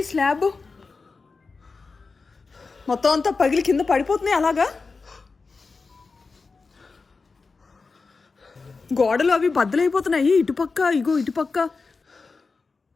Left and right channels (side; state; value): right; quieter; 4.3 dB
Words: స్లాబ్ మొత్తం అంతా పగిలి కింద పడిపోతున్నాయి. అలాగా గోడలు అవి బద్దలైపోతున్నాయి. ఇటుపక్క ఇగో ఇటుపక్క.